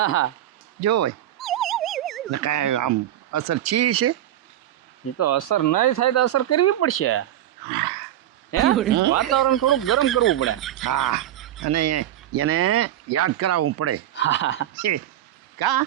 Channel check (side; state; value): left; quieter; 12.6 dB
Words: જોવે ને કાંઈ આમ અસર છી છે. એ તો અસર નહીં થાય તો અસર કરવી પડશે. વાતાવરણ થોડું ગરમ કરવું પડે. હા અને એને યાદ કરાવવું પડે. કા